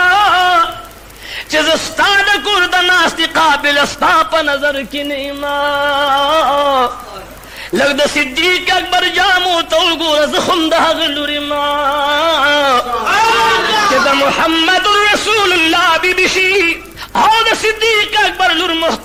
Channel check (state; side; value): identical; both; correlation 1.00